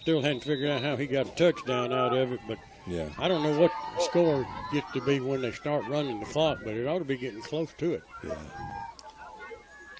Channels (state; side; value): identical; both; correlation 1.00